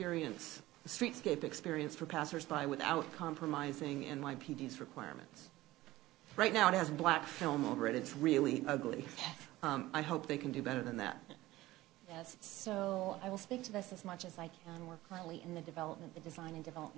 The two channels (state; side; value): quieter; left; 17.3 dB